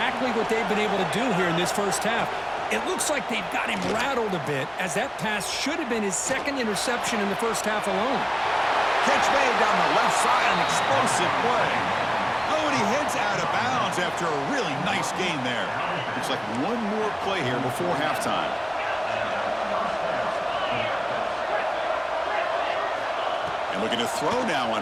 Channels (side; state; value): both; identical; correlation 1.00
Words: what they've been able to do here in this first half. It looks like they've got him rattled a bit, as that pass should have been his second interception in the first half alone. Catch made down the left side, an explosive play. Oh, and he heads out of bounds after a really nice gain there. Looks like one more play here before halftime. And looking to throw now